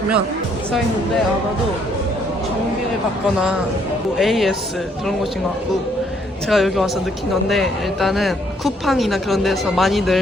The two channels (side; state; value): both; normal; correlation 0.68